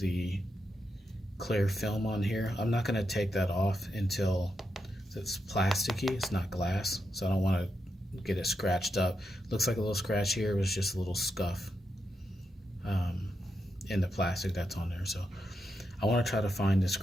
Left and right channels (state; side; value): normal; both; correlation 0.85